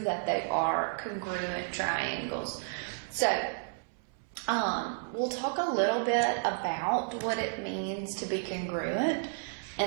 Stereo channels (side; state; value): left; silent; 56 dB below the other